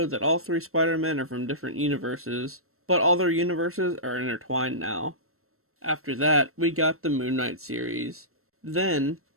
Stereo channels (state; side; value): late; left; 0.63 ms